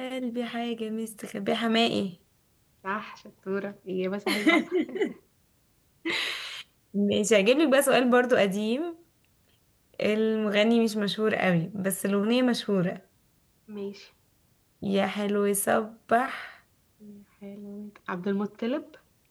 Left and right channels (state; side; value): identical; both; correlation 1.00